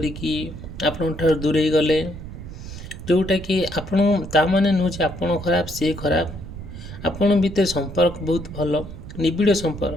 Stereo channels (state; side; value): noise; right; rumble, 12 dB below the sound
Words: आपण ठार दूरे गले जोटा कि आपण ता माने नुचे आपण खराब से खराब आपण भीतर संपर्क बहुत भल निबिड़